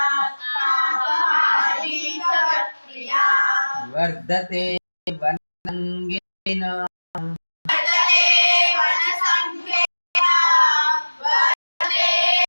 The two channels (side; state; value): both; inverted; correlation -1.00